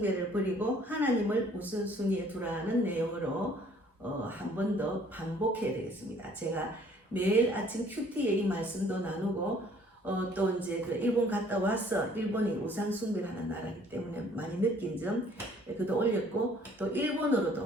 버리고 하나님을 우선순위에 두라는 내용으로 한 번 더 반복해야 되겠습니다. 제가 매일 아침 큐티에 이 말씀도 나누고 또 이제 그 일본 갔다 와서 일본이 우상 숭배를 하는 나라이기 때문에 많이 느낀 점 그도 올렸고 또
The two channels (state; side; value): normal; both; correlation 0.58